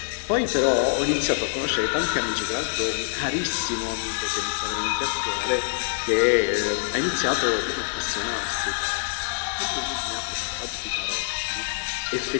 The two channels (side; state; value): right; silent; digital silence